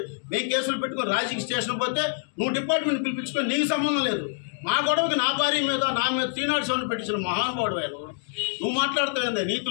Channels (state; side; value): silent; right; digital silence